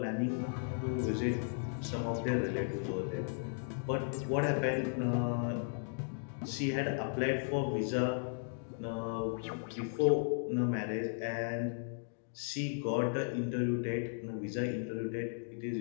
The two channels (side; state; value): right; silent; digital silence